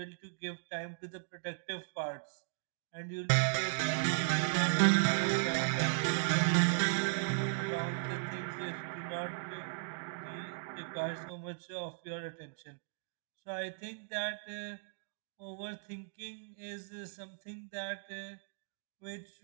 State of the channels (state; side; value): silent; left; digital silence